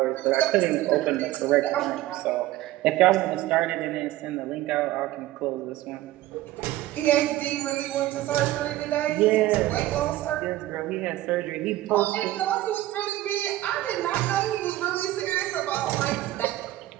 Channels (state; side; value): quieter; left; 15.6 dB